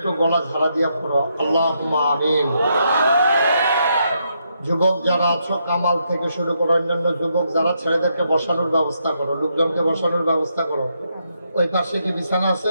গলা ঝাড়া দিয়া পড়ো আল্লাহুম্মা আমিন। যুবক যারা আছো, কামাল থেকে শুরু করে অন্যান্য যুবক যারা, ছেলেদেরকে বসানোর ব্যবস্থা করো, লোকজনকে বসানোর ব্যবস্থা করো। ওই পাশে কি বিছানা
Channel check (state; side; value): inverted; both; correlation -0.79